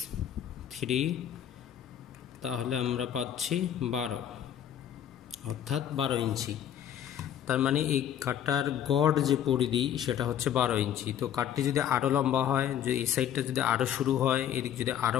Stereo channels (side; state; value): right; quieter; 10.0 dB